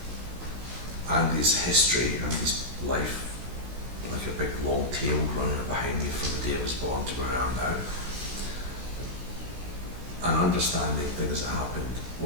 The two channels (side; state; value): left; late; 16 ms